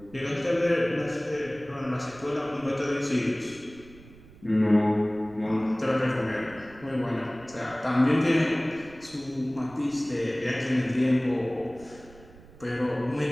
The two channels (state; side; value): noise; right; rumble, 22 dB below the sound